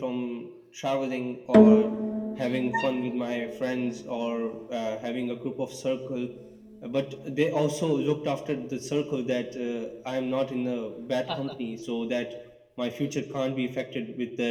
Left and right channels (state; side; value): identical; both; correlation 1.00